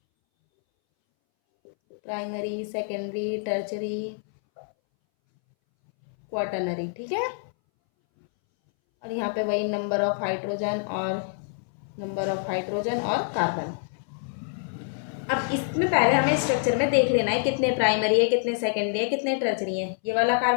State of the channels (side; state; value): right; silent; 61 dB below the other